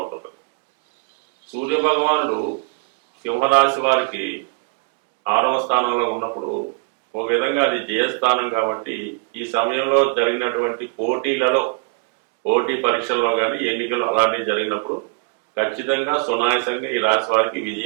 సూర్య భగవానుడు సింహరాశి వారికి 6వ స్థానంలో ఉన్నప్పుడు ఒక విధంగా అది జయస్థానం కాబట్టి ఈ సమయంలో జరిగినటువంటి పోటీ పరీక్షల్లో కానీ ఎన్నికలు అలాంటివి జరిగినప్పుడు ఖచ్చితంగా సునాయాసంగా ఈ రాశి వారికి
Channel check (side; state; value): left; quieter; 32.9 dB